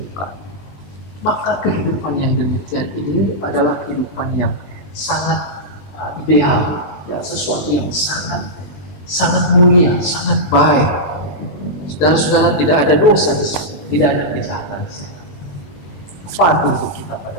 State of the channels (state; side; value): late; right; 20 ms